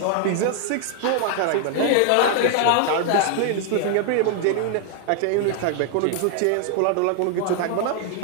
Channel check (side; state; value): both; different; correlation 0.00